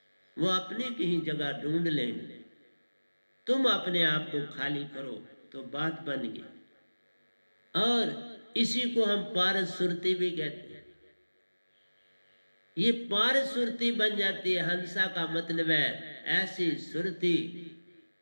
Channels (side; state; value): both; inverted; correlation -1.00